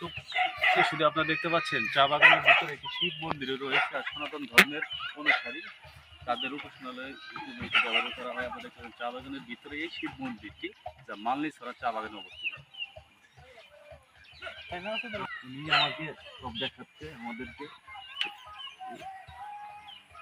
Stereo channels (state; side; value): identical; both; correlation 1.00